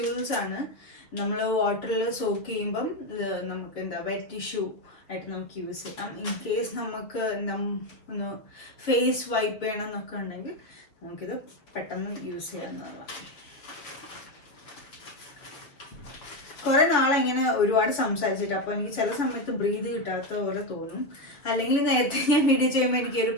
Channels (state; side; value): late; right; 6.5 ms